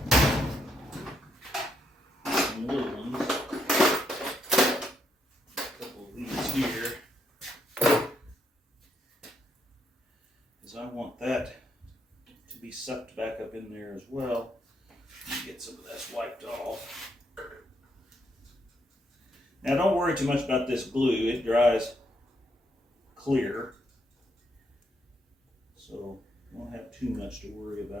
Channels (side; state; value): both; normal; correlation 0.76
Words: Some little ones. A couple of these here. Because I want that to be sucked back up in there as well. Get some of that wiped off. Now don't worry too much about this glue, it dries clear. So you won't have too much to worry